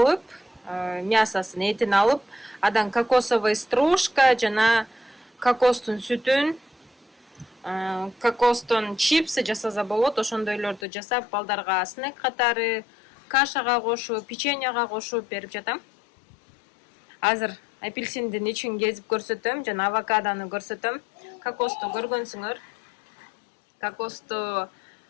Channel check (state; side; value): drops out; right; at 10.8 s